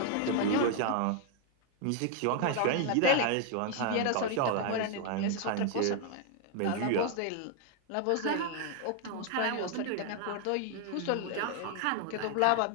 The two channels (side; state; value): both; different; correlation 0.00